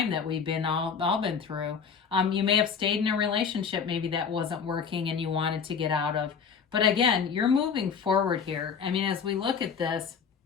that we've been all been through. You may have stayed in a relationship maybe that wasn't working and you wanted to get out of. But again, you're moving forward here. I mean, as we look at this,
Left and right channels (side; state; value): right; quieter; 6.4 dB